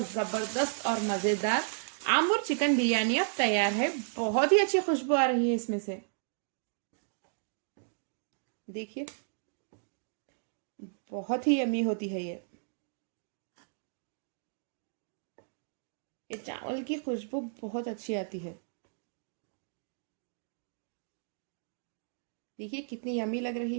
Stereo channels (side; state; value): left; silent; digital silence